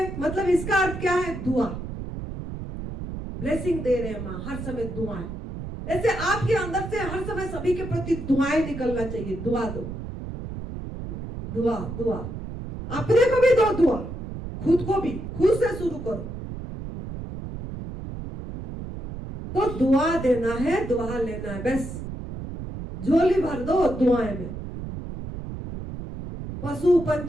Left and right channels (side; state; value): right; noise; rumble, 8 dB below the sound